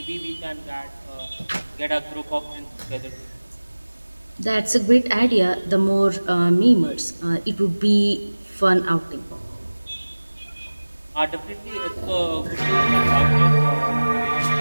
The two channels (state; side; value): inverted; both; correlation -1.00